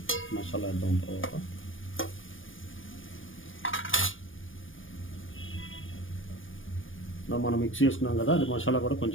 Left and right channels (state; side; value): late; right; 0.57 ms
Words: మసాలా వేద్దాం. తర్వాత మనం మిక్స్ చేసుకున్నాం కదా, అది మసాలా కూడా